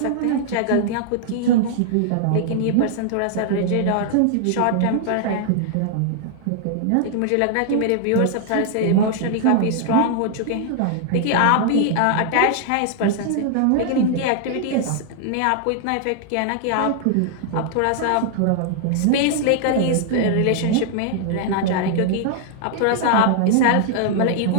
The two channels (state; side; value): different; both; correlation 0.00